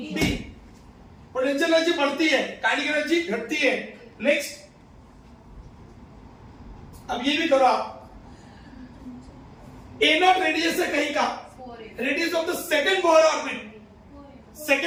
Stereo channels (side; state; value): both; identical; correlation 1.00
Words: D. Potential energy बढ़ती है, काइनेटिक एनर्जी घटती है। नेक्स्ट, अब ये भी करो आप। ए नॉट रेडियस है कहीं का, radius of the second Bohr orbit.